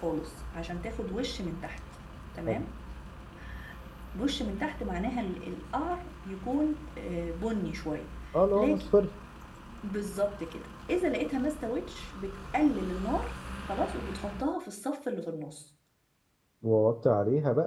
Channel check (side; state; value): both; identical; correlation 1.00